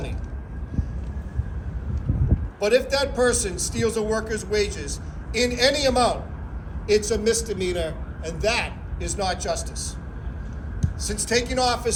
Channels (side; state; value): both; identical; correlation 1.00